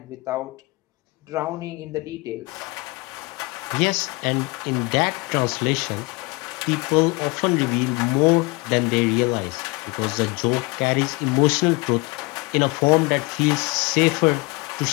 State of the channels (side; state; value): right; quieter; 25.3 dB